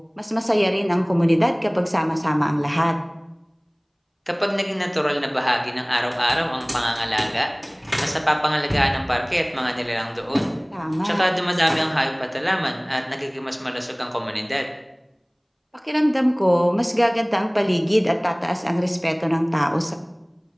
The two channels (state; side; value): identical; both; correlation 1.00